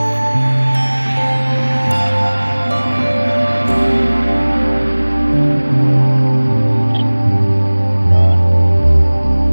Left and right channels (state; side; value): inverted; both; correlation -1.00